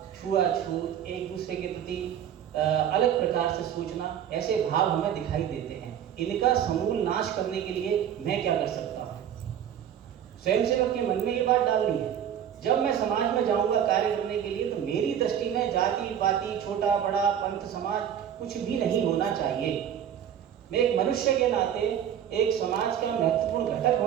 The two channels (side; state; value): left; quieter; 9.5 dB